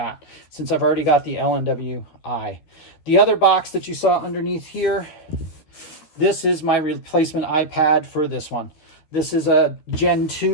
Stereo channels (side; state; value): right; late; 13 ms